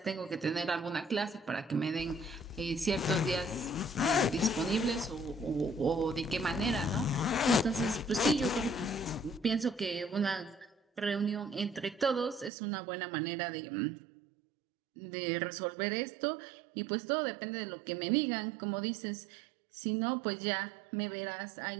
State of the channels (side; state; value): left; drops out; at 12.5 s